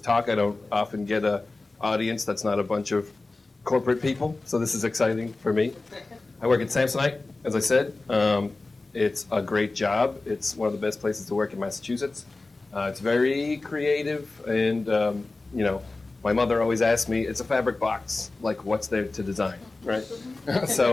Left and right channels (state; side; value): quieter; right; 3.3 dB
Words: I don't often get an audience that's not a bunch of corporate people, so this is exciting for me. I work at Samsonite, as I said. It's a great job. It's one of the best places to work in Massachusetts. It's very creative, and my mother always asked me, it's a fabric box, like what's there to design, right?